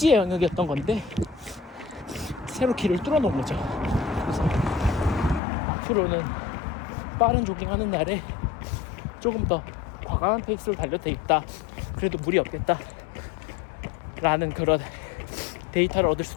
영역이었던 건데 새로 길을 뚫어놓은 거죠. 그래서 앞으로는 빠른 조깅하는 날에 조금 더 과감한 페이스로 달려도 되겠다, 그래도 무리 없겠다 라는 그런 데이터를 얻을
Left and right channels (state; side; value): drops out; right; at 5.4 s